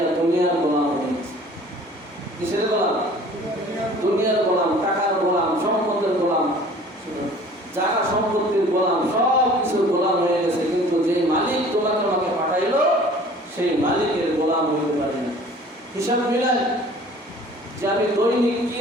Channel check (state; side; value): normal; both; correlation 0.49